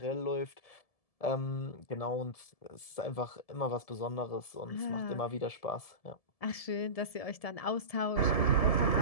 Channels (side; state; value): right; late; 1.7 ms